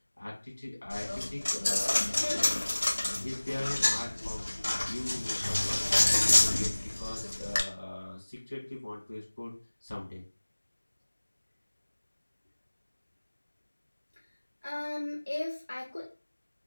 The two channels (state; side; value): inverted; both; correlation -1.00